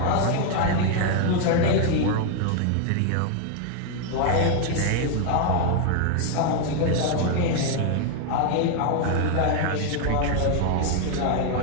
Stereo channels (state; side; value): different; both; correlation 0.00